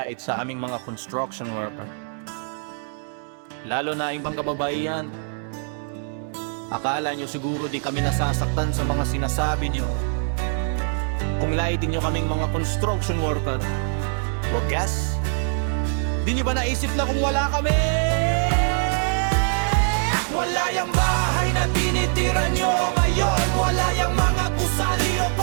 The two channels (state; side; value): silent; left; digital silence